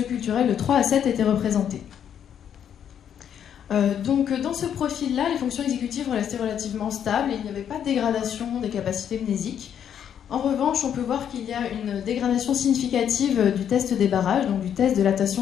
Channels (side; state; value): right; quieter; 9.0 dB